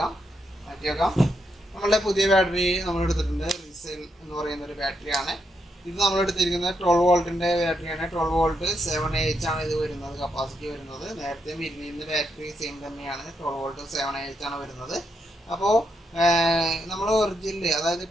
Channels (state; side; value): normal; both; correlation 0.81